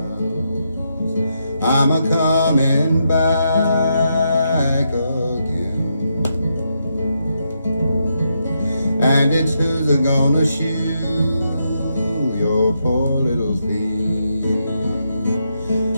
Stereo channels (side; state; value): both; inverted; correlation -0.81